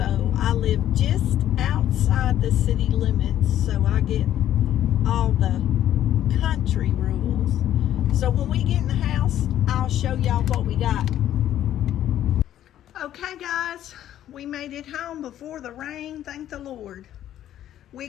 I live just outside the city limits, so I get all the country rules. So when we get in the house, I'll show y'all what we got. Okay guys, we made it home before the rain, thank the Lord. We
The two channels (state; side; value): quieter; right; 11.8 dB